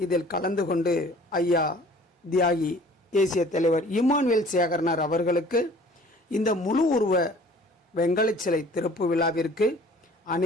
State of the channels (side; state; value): both; normal; correlation 0.50